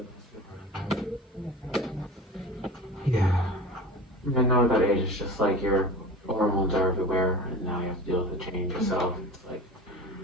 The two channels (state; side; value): normal; both; correlation 0.35